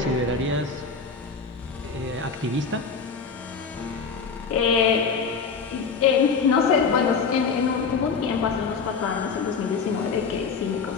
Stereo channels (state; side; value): quieter; right; 5.3 dB